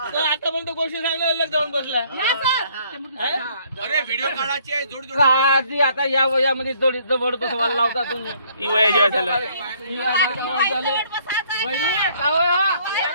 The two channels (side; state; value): both; inverted; correlation -0.63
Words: गोष्टी सांगल्या अलग जाऊन बसला. अरे व्हिडिओ काढायची आहे जोड जोड. आधी आता या वयामध्ये जोडी जवळ बसवायला लावता तुम्ही. ही वया जेव्हा झालं